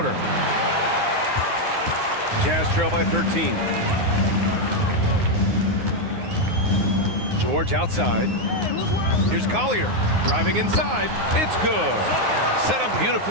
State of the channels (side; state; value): left; late; 9.6 ms